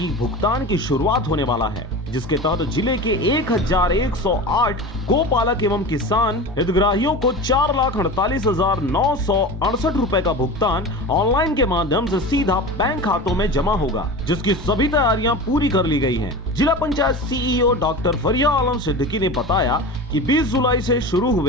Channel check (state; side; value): normal; both; correlation 0.30